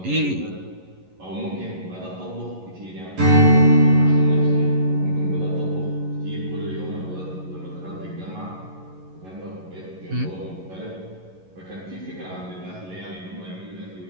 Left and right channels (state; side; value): late; left; 11 ms